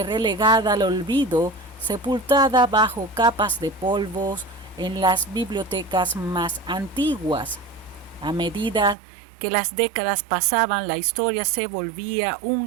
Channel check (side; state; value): left; drops out; at 9.0 s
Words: relegada al olvido, sepultada bajo capas de polvos en las bibliotecas más antiguas. A medida que las décadas pasaban, la historia se volvía